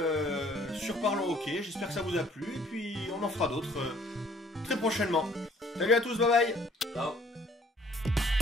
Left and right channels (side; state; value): both; normal; correlation 0.58